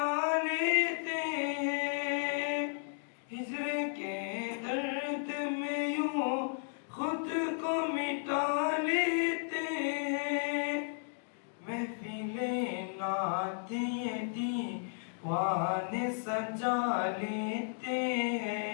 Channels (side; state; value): right; silent; digital silence